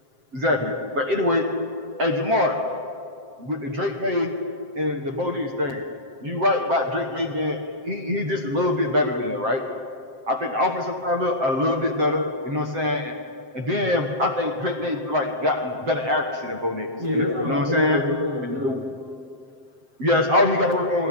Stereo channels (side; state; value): left; late; 7.6 ms